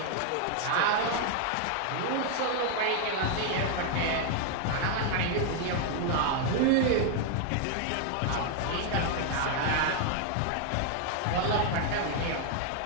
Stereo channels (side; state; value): both; different; correlation 0.00